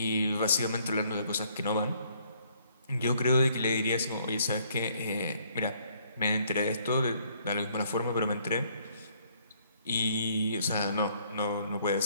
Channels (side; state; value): both; inverted; correlation -0.65